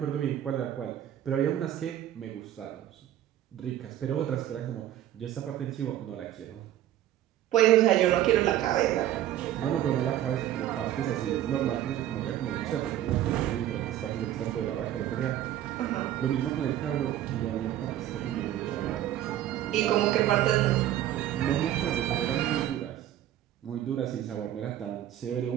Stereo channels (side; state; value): left; quieter; 12.4 dB